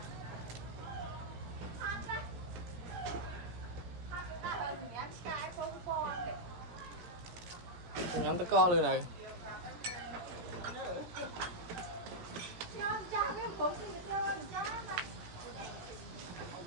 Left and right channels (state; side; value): late; left; 17 ms